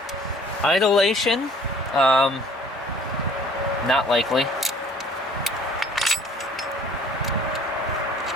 Idlation, not likely.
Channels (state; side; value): normal; both; correlation 0.53